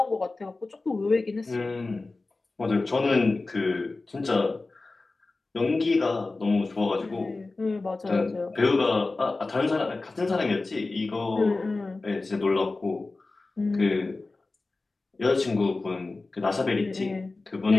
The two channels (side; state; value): right; quieter; 3.4 dB